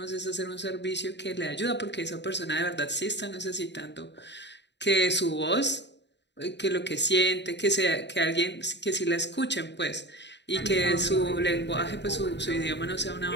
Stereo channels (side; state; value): right; late; 0.51 ms